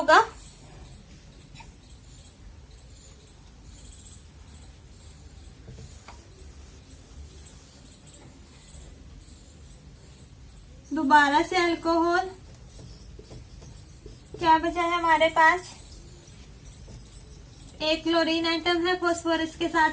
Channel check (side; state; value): both; identical; correlation 1.00